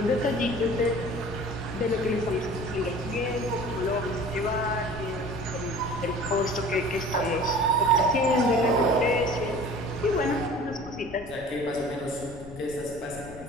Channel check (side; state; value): left; noise; rumble, 16 dB below the sound